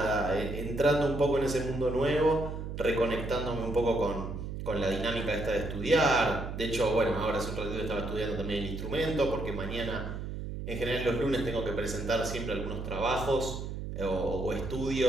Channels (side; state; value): right; noise; hum, 6 dB below the sound